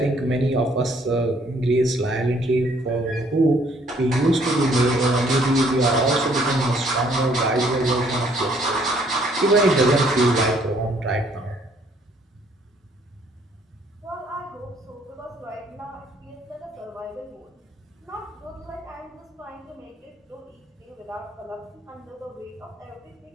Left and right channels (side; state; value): both; normal; correlation 0.64